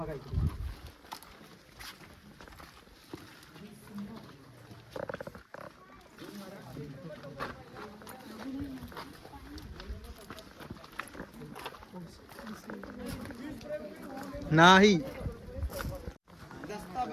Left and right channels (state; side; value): identical; both; correlation 1.00